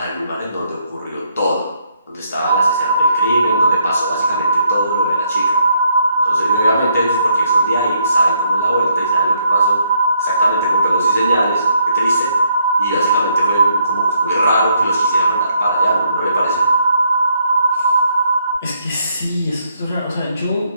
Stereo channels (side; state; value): both; inverted; correlation -0.72